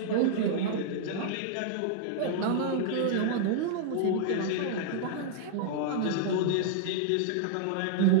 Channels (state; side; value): different; both; correlation -0.01